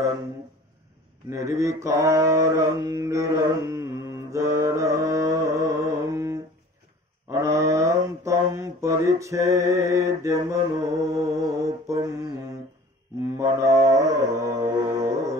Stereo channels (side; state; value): both; normal; correlation 0.45